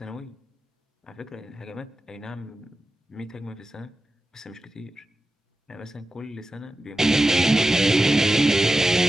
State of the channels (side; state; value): both; normal; correlation 0.92